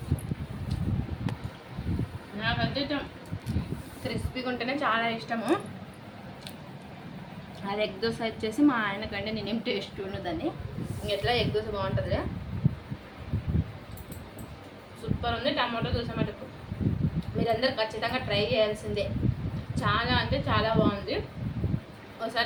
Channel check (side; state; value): both; identical; correlation 1.00